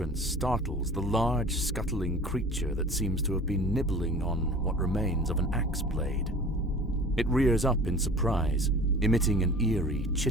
startles the large, scuttling creature that seems to have been nibbling on what remains of an axe blade. It rears up in surprise, emitting an eerie,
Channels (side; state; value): both; normal; correlation 0.42